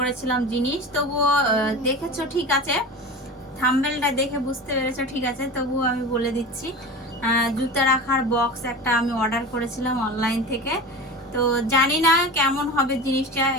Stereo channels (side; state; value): both; normal; correlation 0.31